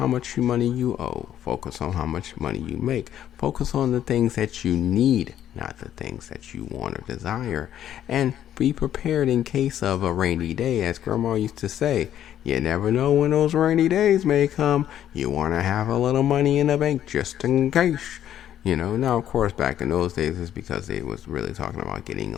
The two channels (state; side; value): quieter; right; 10.9 dB